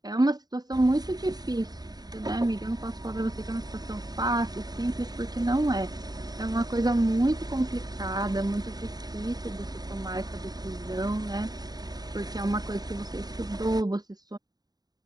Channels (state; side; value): late; left; 0.19 ms